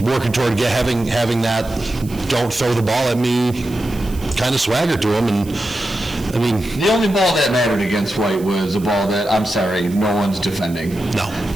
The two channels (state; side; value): noise; right; hiss, 20 dB below the sound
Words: working toward having that don't throw the ball at me kind of swagger to him. And I mean, the only ball that mattered against White was a ball that, I'm sorry, no one's defending. No.